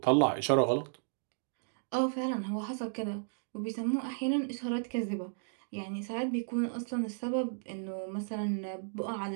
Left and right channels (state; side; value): silent; left; digital silence